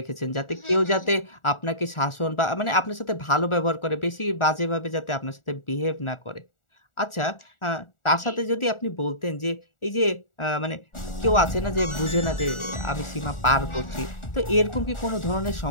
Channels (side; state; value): right; late; 1.4 ms